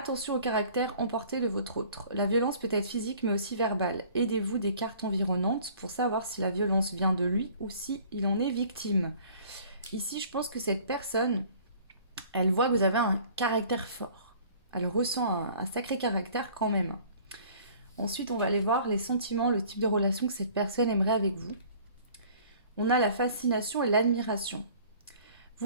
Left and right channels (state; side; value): inverted; both; correlation -0.51